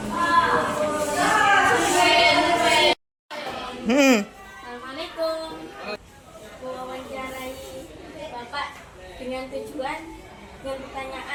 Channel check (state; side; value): identical; both; correlation 1.00